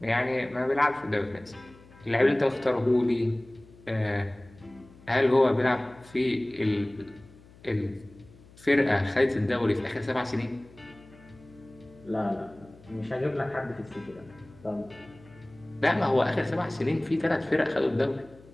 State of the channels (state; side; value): noise; left; hum, 24 dB below the sound